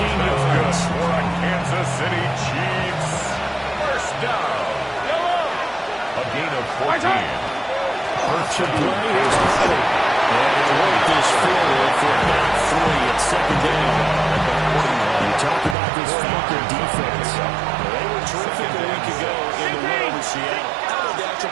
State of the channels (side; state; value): left; drops out; at 15.8 s